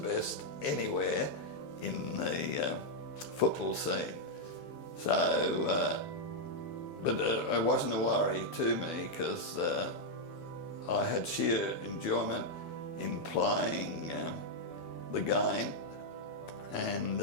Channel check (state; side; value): late; right; 7.0 ms